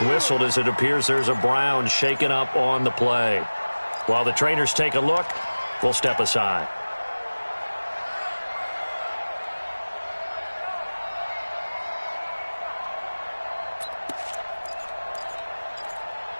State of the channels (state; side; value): inverted; both; correlation -1.00